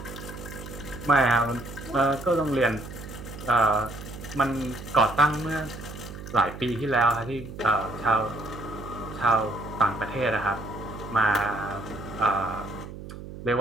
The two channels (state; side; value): noise; right; hum, 12 dB below the sound